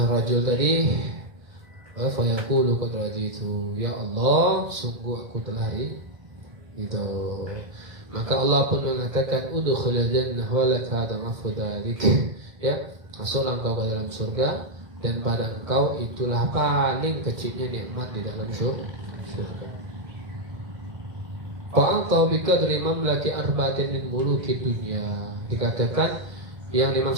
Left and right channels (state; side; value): late; left; 2.1 ms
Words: rajul tadi, fa yaqulu qad raditu, ya Allah, sungguh aku telah itu. Maka Allah pun mengatakan, udkhulul jannah wa lak hada afdalik. Ya, masuklah engkau ke dalam surga, dan pada engkau itulah paling kecilnya nikmat di dalam surga. Fa'anta biqadri mamlaki arba'atin min muluki dunya. Dikatakan yang